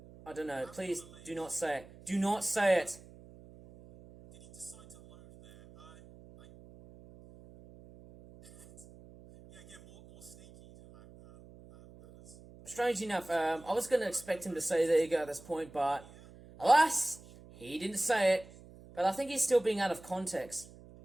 I don't know. Please do not say it. Do not say it. Did he decide to load there? Yeah, more snaky ladders. Strange enough, I was going to expect him to say there you go at this point, but alas, he didn't say it. But I think he's still being out of context.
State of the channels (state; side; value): noise; right; hum, 21 dB below the sound